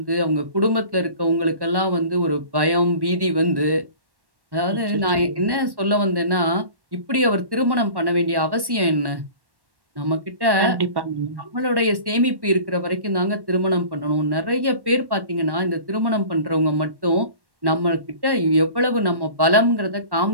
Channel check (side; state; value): left; late; 1.1 ms